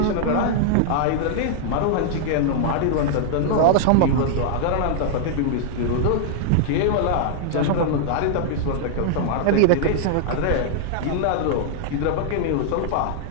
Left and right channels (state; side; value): different; both; correlation -0.01